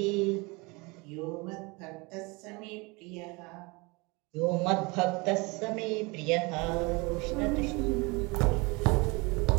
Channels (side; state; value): left; quieter; 26.6 dB